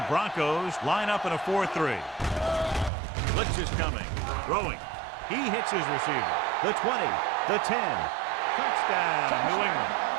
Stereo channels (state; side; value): drops out; left; at 2.9 s